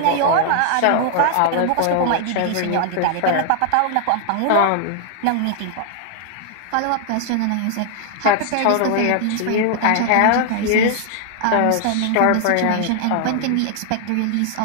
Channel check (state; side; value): different; both; correlation 0.00